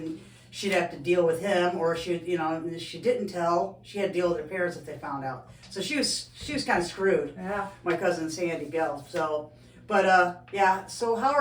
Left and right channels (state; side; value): identical; both; correlation 1.00